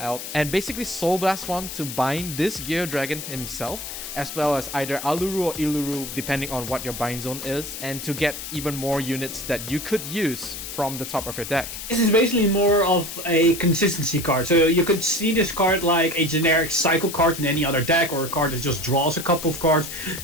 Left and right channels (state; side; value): noise; left; hiss, 8 dB below the sound